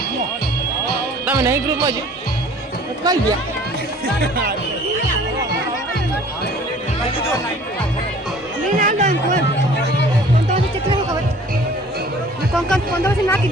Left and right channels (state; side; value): normal; both; correlation 0.50